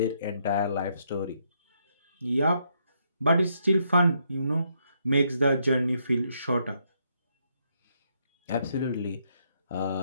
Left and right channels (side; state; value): both; inverted; correlation -0.75